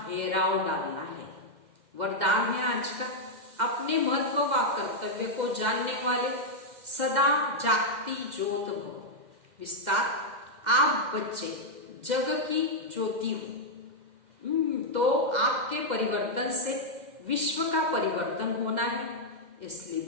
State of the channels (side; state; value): left; late; 2.1 ms